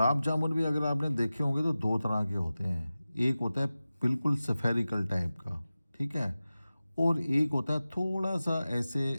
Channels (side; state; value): both; inverted; correlation -0.96